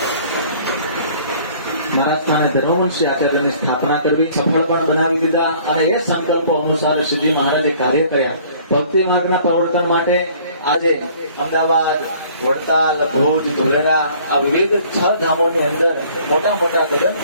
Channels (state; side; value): inverted; both; correlation -0.55